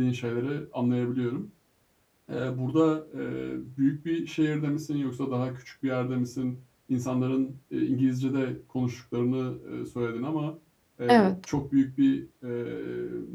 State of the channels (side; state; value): both; identical; correlation 1.00